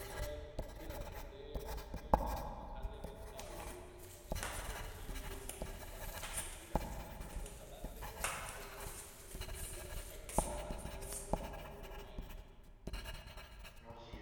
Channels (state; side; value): identical; both; correlation 1.00